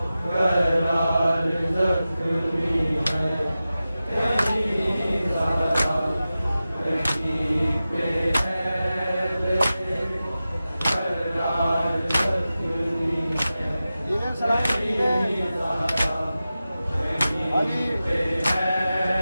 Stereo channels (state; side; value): inverted; both; correlation -0.94